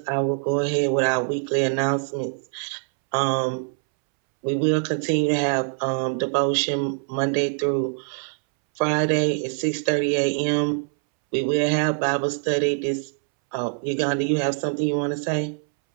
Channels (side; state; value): left; silent; 63 dB below the other